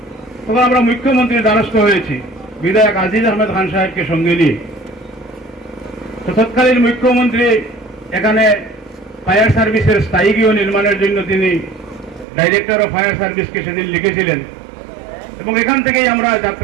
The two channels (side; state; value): left; drops out; at 12.2 s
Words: তখন আমরা মুখ্যমন্ত্রীর দ্বারস্থ হয়েছি বিধায়ক আজিজ আহমেদ খান সাহেবকে সঙ্গে নিয়ে। তো তৎকালীন মুখ্যমন্ত্রী এখানে ফায়ার সার্ভিসের স্থায়ী গৃহ নির্মাণের জন্য তিনি ডাইরেক্টর অফ ফায়ার সার্ভিসকে সেদিন লিখেছিলেন এবং এখান থেকেই আমরা